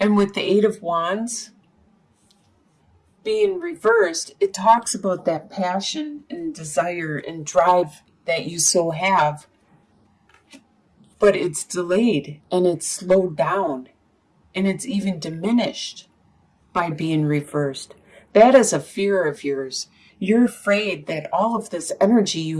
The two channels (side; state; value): both; identical; correlation 1.00